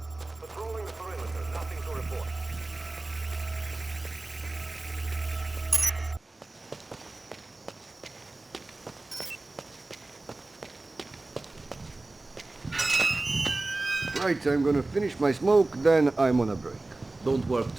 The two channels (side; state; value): left; quieter; 3.1 dB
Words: Patrolling the perimeter, nothing to report. Right, I'm gonna finish my smoke, then I'm on a break. Don't work